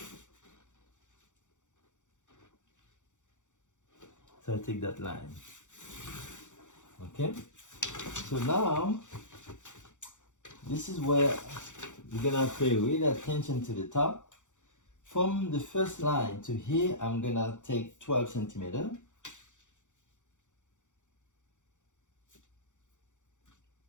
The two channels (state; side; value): late; right; 0.85 ms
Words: So I take that line. Okay? So now, this is where you're gonna pay really attention to the top. From the first line to here, I'm gonna take 12 centimeters.